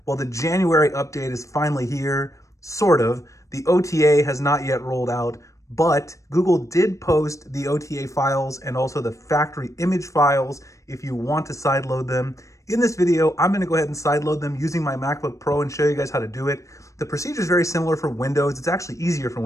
Well, the January update is finally here, sort of. The OTA has not yet rolled out, but Google did post the OTA files and also the factory image files if you want to sideload them. In this video, I'm going to go ahead and sideload them using my MacBook Pro and show you guys how to do it. The procedure is very similar for Windows. It's actually easier for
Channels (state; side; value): late; right; 0.15 ms